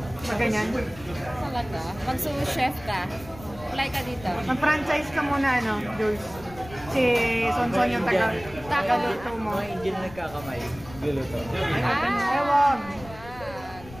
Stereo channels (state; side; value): noise; left; rumble, 17 dB below the sound